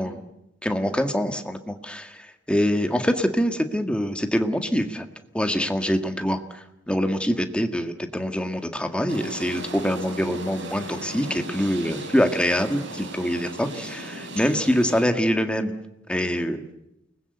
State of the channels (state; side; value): normal; both; correlation 0.86